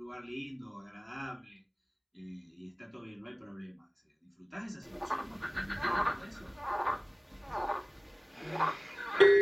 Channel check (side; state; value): both; identical; correlation 1.00